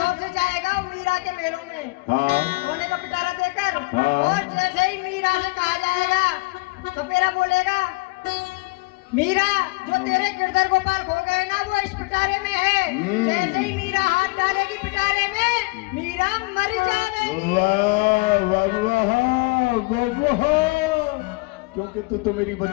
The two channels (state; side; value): quieter; right; 26.2 dB